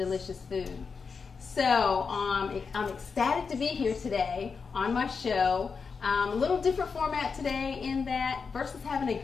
food. So I'm ecstatic to be here today on my show. A little different format today in that versus having a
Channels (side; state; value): right; quieter; 5.3 dB